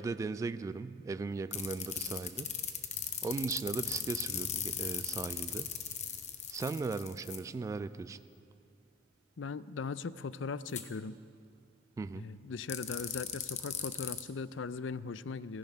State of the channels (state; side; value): normal; both; correlation 0.38